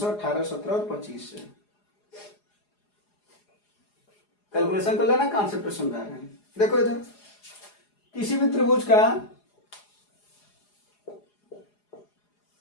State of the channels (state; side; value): late; right; 4.8 ms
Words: 18 17 और 25 से। कैलकुलेशन कर लेना, कॉन्सेप्ट समझा रहे हैं। देखो इधर किसी भी त्रिभुज का